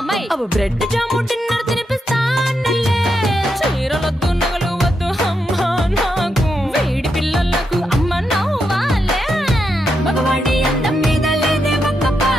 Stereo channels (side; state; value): both; normal; correlation 0.83